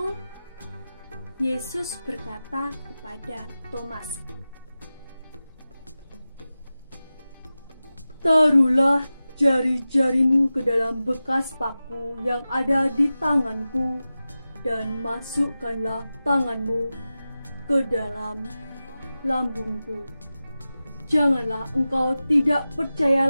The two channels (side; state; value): both; inverted; correlation -0.94